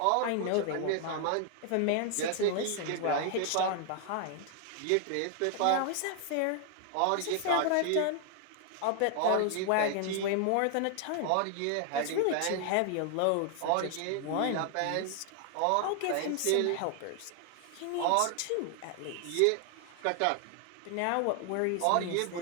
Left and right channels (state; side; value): different; both; correlation 0.00